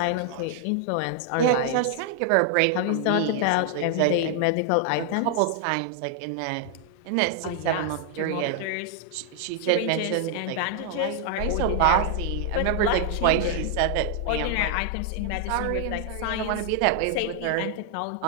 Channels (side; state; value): both; different; correlation 0.00